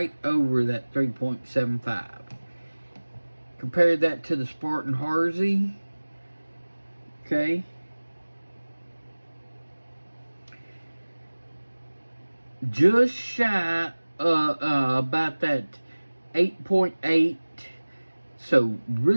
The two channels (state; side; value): inverted; both; correlation -1.00